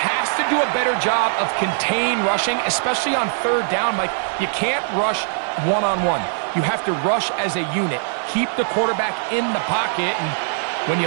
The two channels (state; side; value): silent; left; 57 dB below the other